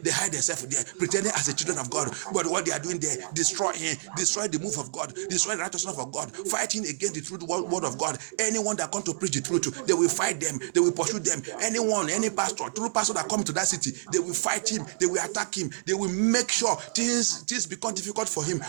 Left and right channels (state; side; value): silent; left; digital silence